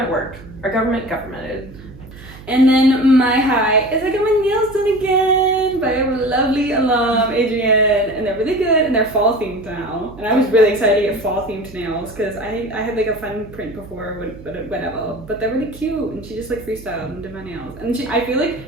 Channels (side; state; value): right; noise; hum, 18 dB below the sound